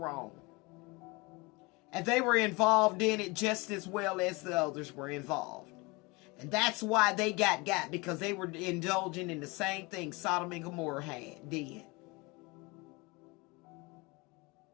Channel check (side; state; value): right; quieter; 25.8 dB